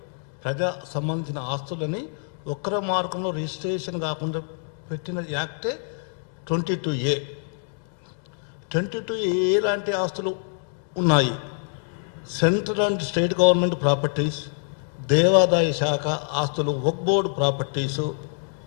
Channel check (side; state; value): right; silent; 62 dB below the other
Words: ప్రజా సంబంధించిన ఆస్తులని ఒక్కర మార్గంలో రిజిస్ట్రేషన్ కాకుండా పెట్టిన యాక్టే 22A. 22A లాంటి ఆస్తులు ఉన్నాయి. Central and state government properties, దేవాదాయ శాఖ ఆస్తులు, వక్ఫ్ బోర్డు ప్రాపర్టీసు,